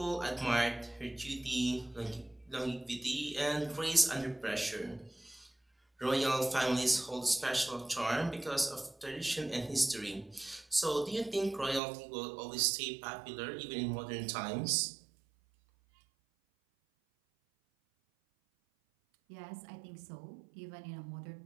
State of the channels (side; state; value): left; drops out; at 11.8 s